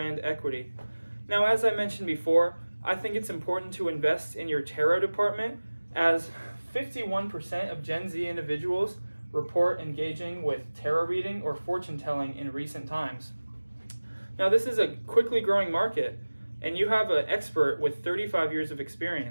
equity. Now, as I mentioned before, I think it's important to invest in your tarot department, as 51% of Gen Z individuals report engaging with tarot reading or fortune telling in recent times. Now, this is a quickly growing market, and you have an expert with 35 years of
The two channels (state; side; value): inverted; both; correlation -1.00